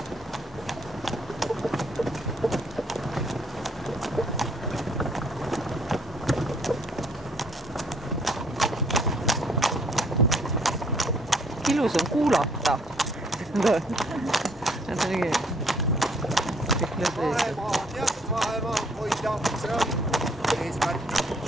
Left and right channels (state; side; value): normal; both; correlation 0.64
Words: Ilus on kuulata. Vahemaa, teatud vahemaa hoida, see on eesmärk.